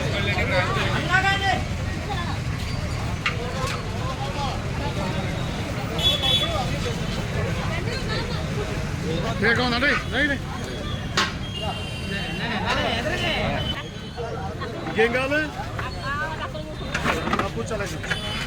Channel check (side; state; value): both; identical; correlation 1.00